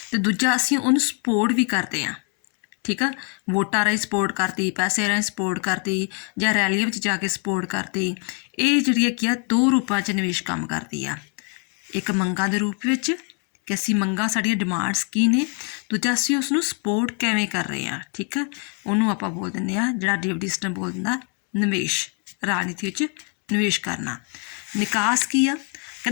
ਅਤੇ ਦੂਜਾ ਅਸੀਂ ਉਹਨੂੰ ਸਪੋਰਟ ਵੀ ਕਰਦੇ ਹਾਂ, ਠੀਕ ਆ। ਵੋਟਾਂ ਰਾਹੀਂ ਸਪੋਰਟ ਕਰਤੀ, ਪੈਸੇ ਰਾਹੀਂ ਸਪੋਰਟ ਕਰਤੀ, ਜਾਂ ਰੈਲੀਆਂ ਵਿੱਚ ਜਾ ਕੇ ਸਪੋਰਟ ਕਰਤੀ। ਇਹ ਜਿਹੜੀ ਕੀ ਆ 2 ਰੂਪਾਂ 'ਚ ਨਿਵੇਸ਼ ਕੰਮ ਕਰਦੀ ਆ। ਇੱਕ ਮੰਗਾਂ ਦੇ ਰੂਪ ਵਿੱਚ ਕਿ ਅਸੀਂ ਮੰਗਾਂ, ਸਾਡੀਆਂ ਡਿਮਾਂਡਸ ਕੀ ਨੇ, ਦੂਜਾ ਅਸੀਂ ਉਸ ਨੂੰ ਸਪੋਰਟ ਕਿਵੇਂ ਕਰ ਰਹੇ ਹਾਂ, ਠੀਕ ਆ। ਉਹਨੂੰ ਆਪਾਂ ਬੋਲ ਦਿੰਦੇ ਹਾਂ, ਜਿਹੜਾ ਡੇਵਿਡ ਈਸਟਨ ਬੋਲ ਦਿੰਦਾ, ਨਿਵੇਸ਼। ਰਾਜਨੀਤੀ ਵਿੱਚ ਨਿਵੇਸ਼ ਕਰਨਾ। ਨਿਕਾਸ ਕੀ ਆ?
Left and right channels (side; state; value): right; quieter; 38.1 dB